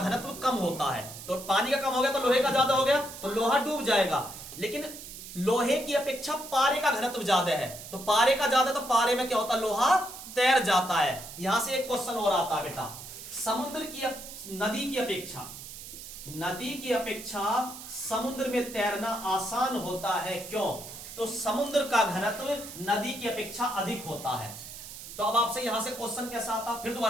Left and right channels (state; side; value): noise; right; hiss, 12 dB below the sound